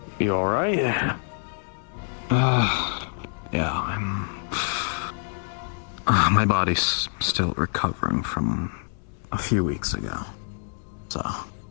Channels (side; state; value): right; silent; digital silence